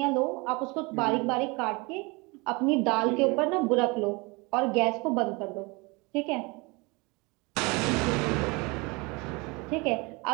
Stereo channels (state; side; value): quieter; left; 26.9 dB